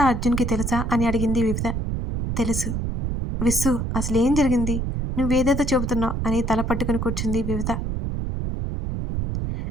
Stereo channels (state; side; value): noise; right; rumble, 2 dB below the sound